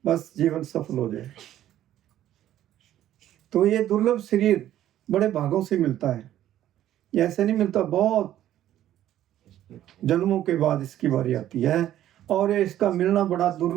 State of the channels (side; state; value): left; quieter; 12.3 dB